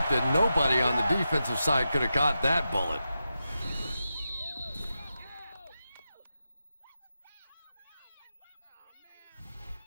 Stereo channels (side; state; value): both; inverted; correlation -0.89